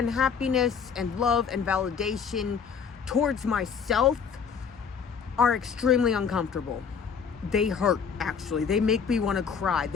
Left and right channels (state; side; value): quieter; right; 6.5 dB